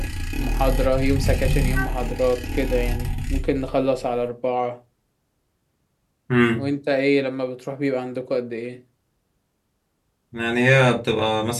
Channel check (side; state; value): both; identical; correlation 1.00